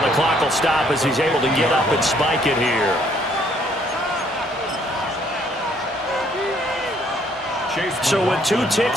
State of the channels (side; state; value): both; normal; correlation 0.65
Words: clock will stop as he's able to get up and spike it here. So with 2